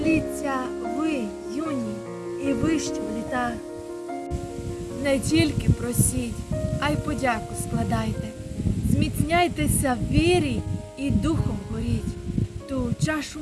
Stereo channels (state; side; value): identical; both; correlation 1.00